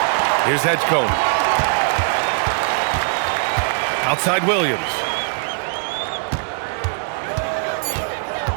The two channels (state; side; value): silent; left; digital silence